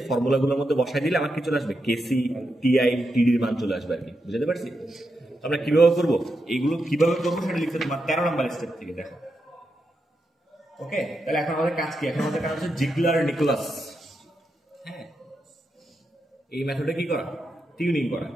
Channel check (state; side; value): normal; both; correlation 0.85